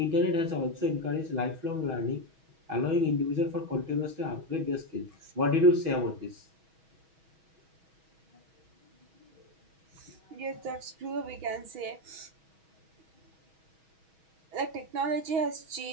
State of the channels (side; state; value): left; late; 6.2 ms